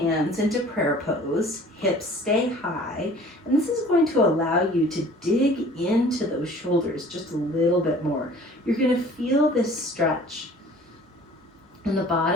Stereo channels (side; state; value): both; normal; correlation 0.49